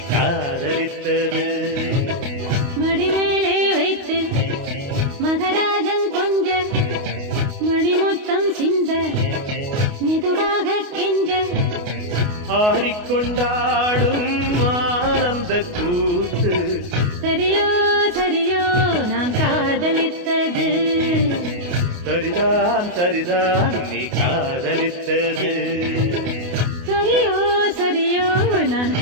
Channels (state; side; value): late; left; 28 ms